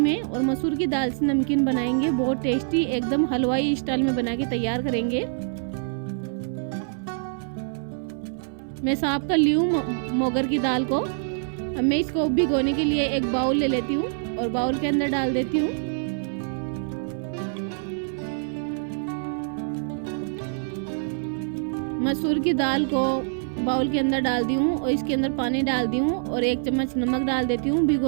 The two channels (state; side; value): silent; left; 59 dB below the other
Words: और मसूर की दाल से नमकीन बनाएंगे। बहुत टेस्टी, एकदम हलवाई स्टाइल में बना के तैयार करेंगे। मैं साफ कर ली हूँ मोगर की दाल को। अब मैं इसको भिगोने के लिए एक बाउल ले लेती हूँ और बाउल के अंदर डाल देती हूँ मसूर की दाल को। बाउल के अंदर डाल दी हूँ और इसके अंदर पानी डाल दी हूँ और 1 चम्मच नमक डाल देती हूँ।